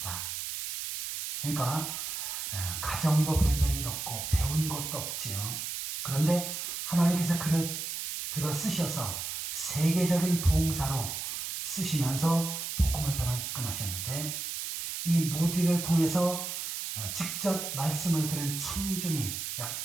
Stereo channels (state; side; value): noise; right; hiss, 5 dB below the sound